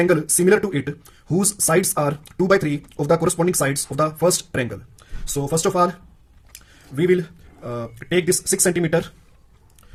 similar to it whose sides are 2 by 3 of the corresponding sides of the first triangle. So first of all, we will take this 6 cm.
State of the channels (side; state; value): both; identical; correlation 1.00